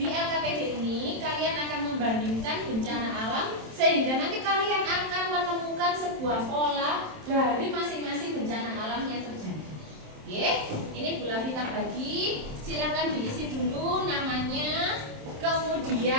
LKPD ini, kalian akan membandingkan bencana alam sehingga nanti kalian akan menemukan sebuah pola dari masing-masing bencana alam yang terjadi. Oke, ini Bu Lavita bagi. Silakan diisi dulu namanya,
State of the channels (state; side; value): late; left; 27 ms